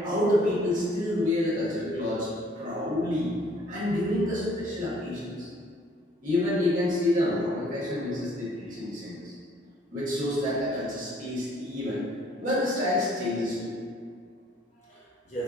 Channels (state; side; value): normal; both; correlation 0.59